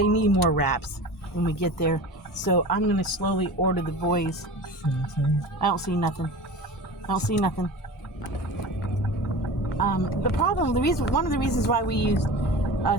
need more wraps when we get there. So I'm going to slowly order the boys. I don't see nothing. One of the reasons why we used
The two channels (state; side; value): normal; both; correlation 0.34